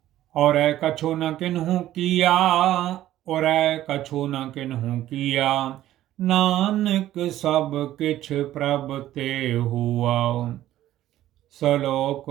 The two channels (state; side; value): quieter; left; 13.6 dB